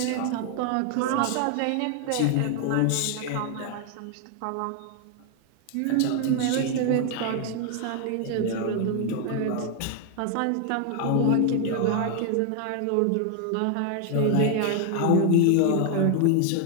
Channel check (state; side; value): different; both; correlation 0.00